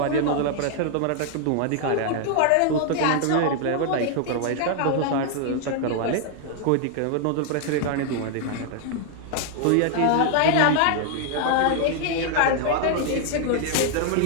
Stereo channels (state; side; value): different; both; correlation 0.00